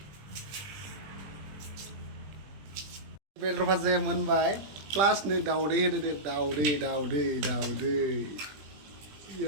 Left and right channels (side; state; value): left; late; 20 ms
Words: बेदर भाजाया मोनबाय प्लास नै दाउदै होदो दे दाउदै